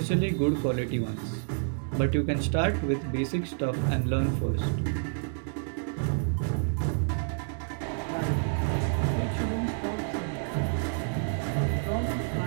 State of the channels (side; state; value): left; silent; 59 dB below the other